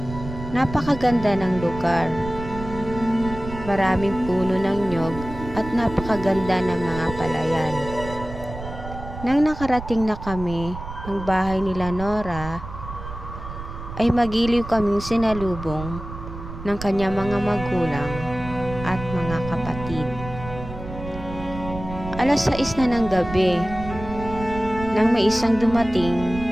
Napakaganda ng lugar. Maraming puno ng nyog at napakaganda ng mga palayan. Nang nakarating na kami ng bahay nila Nora, ay magiliw kaming sinalubong ng kanyang mga magulang at mga kapatid. 6:00 na ng gabi nang may isang dumating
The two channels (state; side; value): noise; right; rumble, 11 dB below the sound